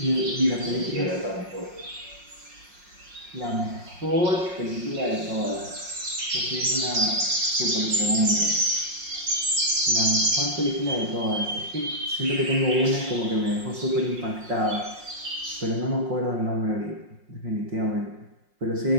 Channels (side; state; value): left; late; 5.6 ms